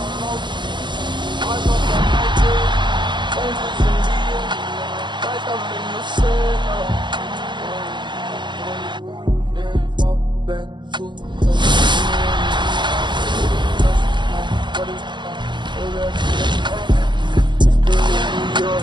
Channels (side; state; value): left; late; 0.22 ms